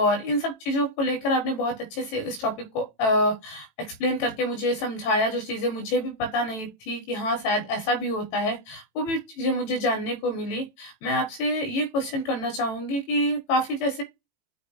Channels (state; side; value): late; right; 18 ms